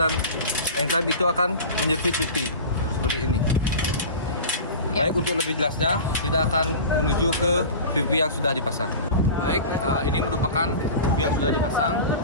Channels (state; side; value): inverted; both; correlation -0.33